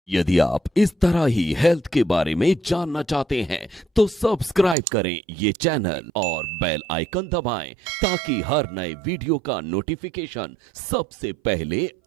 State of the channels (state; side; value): drops out; left; at 4.8 s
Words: यदि आप इस तरह ही हेल्थ के बारे में जानना चाहते हैं तो सब्सक्राइब करें ये चैनल और बेल आइकन दबाएं ताकि हर नए वीडियो का नोटिफिकेशन सबसे पहले